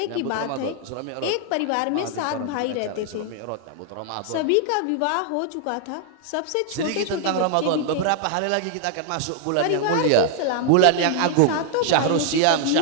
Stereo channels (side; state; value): both; different; correlation 0.00